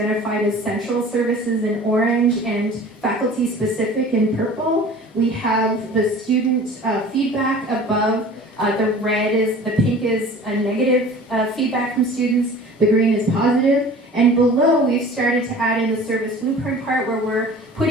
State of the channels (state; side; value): normal; both; correlation 0.43